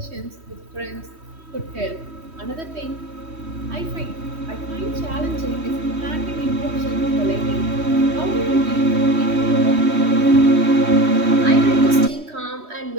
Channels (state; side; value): late; left; 3.1 ms